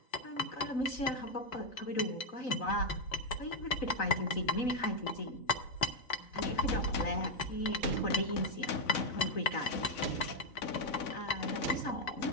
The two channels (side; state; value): right; late; 4.1 ms